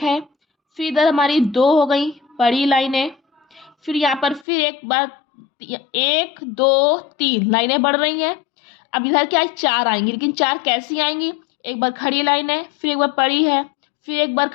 है, फिर इधर हमारी 2 हो गई बड़ी लाइनें, फिर यहाँ पर फिर एक बार 1 2 3 लाइनें बढ़ रही हैं। अब इधर क्या है, 4 आएंगी, लेकिन 4 कैसी आएंगी, एक बार खड़ी लाइन है, फिर एक बार पड़ी है, फिर एक बार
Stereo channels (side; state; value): right; drops out; at 4.5 s